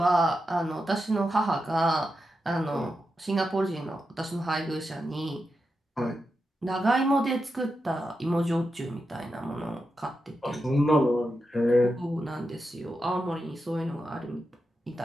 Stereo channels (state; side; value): normal; both; correlation 0.88